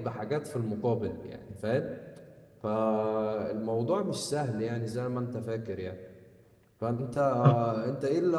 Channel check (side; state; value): both; identical; correlation 1.00